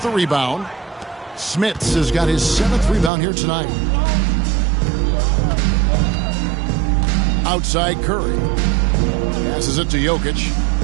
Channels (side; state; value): left; drops out; at 3.1 s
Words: the rebound. Smits has got his 7th rebound here tonight. Outside Curry. Passes it to Jokic.